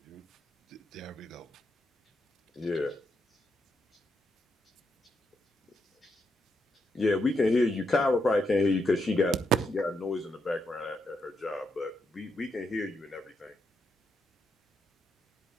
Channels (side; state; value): both; normal; correlation 0.81